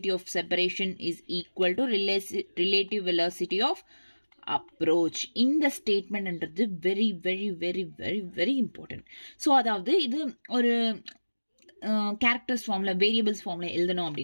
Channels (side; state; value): both; inverted; correlation -1.00